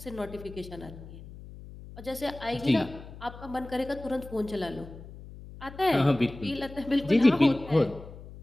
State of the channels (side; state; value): left; noise; hum, 15 dB below the sound